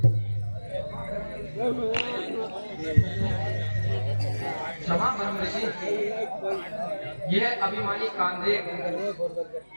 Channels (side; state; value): both; inverted; correlation -1.00